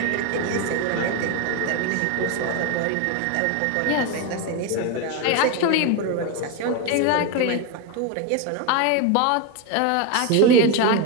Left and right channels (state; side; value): different; both; correlation 0.02